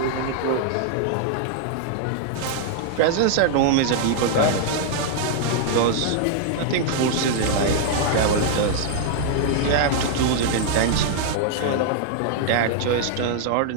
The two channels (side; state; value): both; different; correlation -0.01